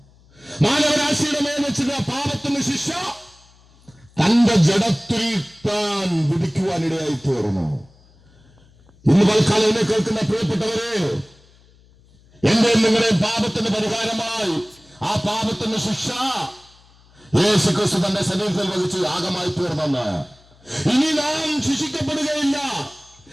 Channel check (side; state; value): left; noise; hum, 29 dB below the sound